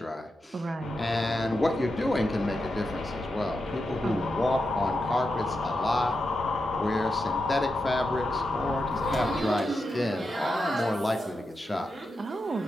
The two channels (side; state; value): both; normal; correlation 0.88